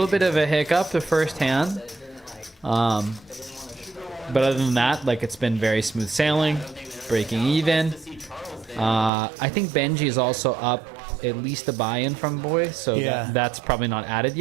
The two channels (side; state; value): left; drops out; at 9.1 s